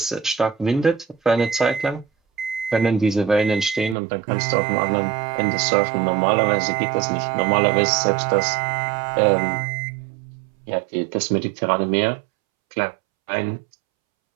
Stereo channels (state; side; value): drops out; left; at 4.0 s